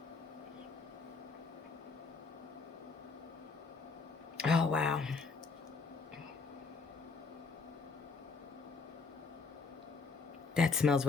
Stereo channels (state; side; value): quieter; right; 4.6 dB